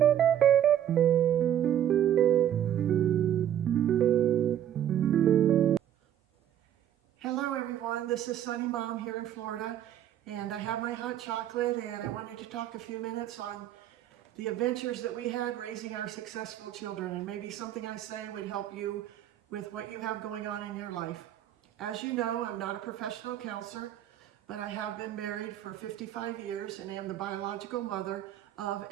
everyone, this is Sunny Mom here in Florida, and I have my hot chocolate, and I wanted to talk a few minutes on the adventures that we had raising our successful children, and maybe something I say would help you with what you have going on in your life. As you know, I'm not a professional counselor, but I have been married for 55 years and am the biological mother of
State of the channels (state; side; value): quieter; left; 10.8 dB